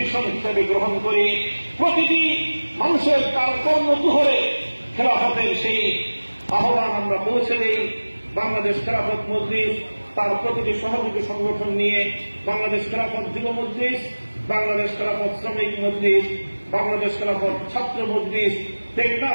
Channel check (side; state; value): both; inverted; correlation -1.00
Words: হিসেবে গ্রহণ করি। প্রতিটি মানুষের তার কর্মকুহরে খেলাফতের সেই আহ্বান আমরা পৌঁছে দিই। বাংলাদেশ খেলাফত মজলিস তার প্রতিটি সহযোগী সংগঠন নিয়ে বাংলাদেশ খেলাফত যুব মজলিস, বাংলাদেশ খেলাফত শ্রমিক মজলিস, বাংলাদেশ খেলাফত ছাত্র মজলিস,